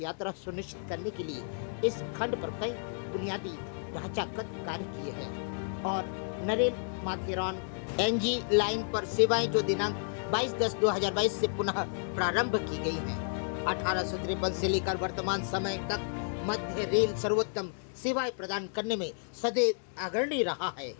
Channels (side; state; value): right; silent; digital silence